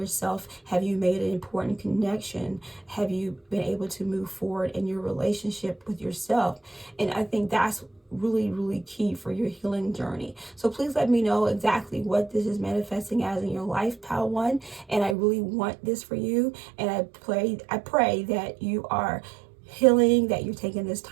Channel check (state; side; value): drops out; left; at 15.2 s